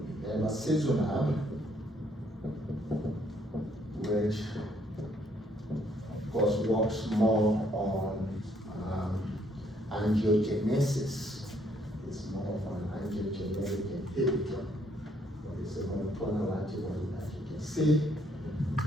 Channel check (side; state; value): both; normal; correlation 0.69